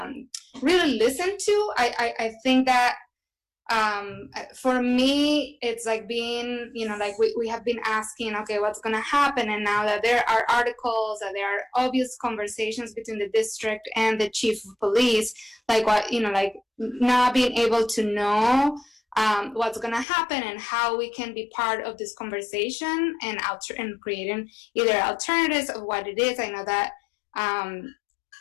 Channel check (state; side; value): drops out; right; at 20.1 s